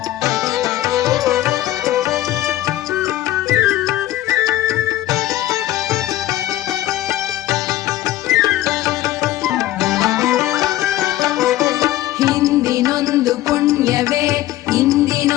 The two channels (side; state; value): right; quieter; 14.6 dB